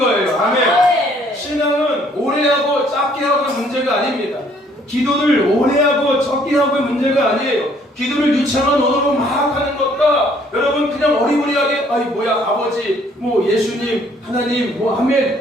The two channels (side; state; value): both; normal; correlation 0.63